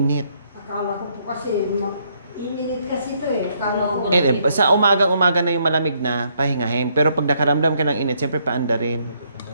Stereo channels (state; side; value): inverted; both; correlation -0.72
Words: Akala ko po kasi, ininit kasi ito eh. Akala ko. Sa umagang-umaga na yung malamig na, pahingahin. Pero pag nakaramdam ka ng init, siyempre paanda rin.